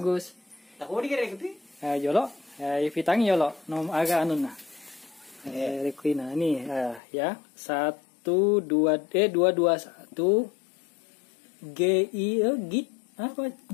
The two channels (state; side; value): drops out; right; at 7.0 s